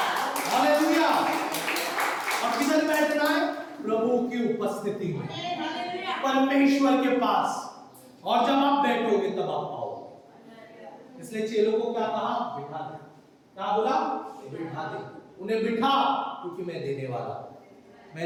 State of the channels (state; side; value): identical; both; correlation 1.00